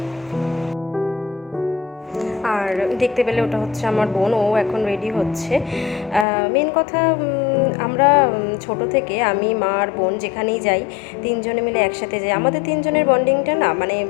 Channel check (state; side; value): drops out; right; at 6.2 s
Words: আর দেখতে পেলে ওটা হচ্ছে আমার বোন, ও এখন রেডি হচ্ছে। মেন কথা, আমরা ছোট থেকে আমি, মা আর বোন যেখানেই যাই তিনজনে মিলে একসাথে যাই। আমাদের তিনজনের বন্ডিংটা না মানে